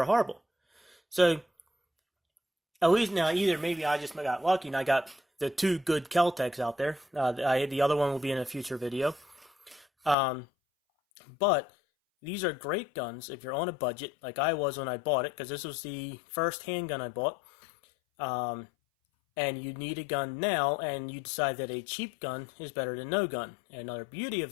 horrible? So, at least now, either maybe I just got lucky and I got the 2 good Kel-Tecs out there. The other one will be in a future video. But these are great guns if you're on a budget, like I was when I bought it, because this was the first handgun I bought. And you need a gun now, and you decide that a cheap gun is better than no gun. And another beauty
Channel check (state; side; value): drops out; right; at 10.2 s